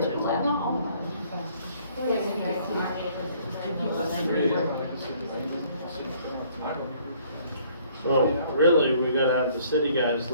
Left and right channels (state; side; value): inverted; both; correlation -0.60